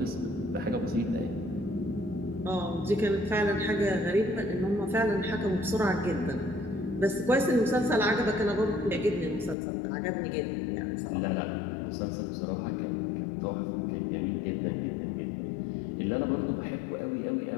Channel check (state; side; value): drops out; right; at 9.6 s